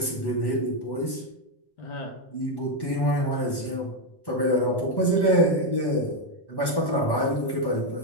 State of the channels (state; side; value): late; right; 1.1 ms